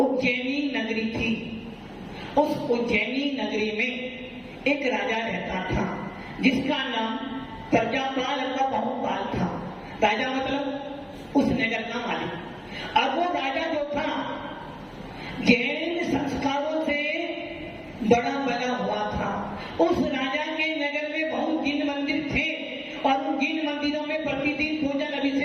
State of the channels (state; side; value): identical; both; correlation 1.00